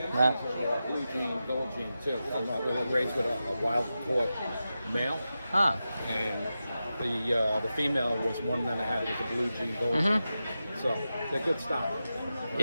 Blue jean, gold jean too. They were raised with a wild caught male, Huh. and the female was one that I had. It was a blue jean, gold jean. So they're good stock.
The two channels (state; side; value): inverted; both; correlation -0.92